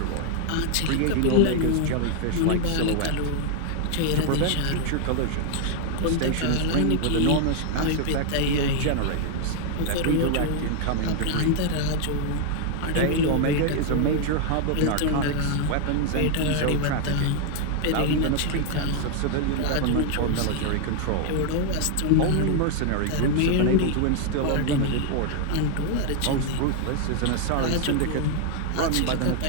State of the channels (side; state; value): both; different; correlation 0.00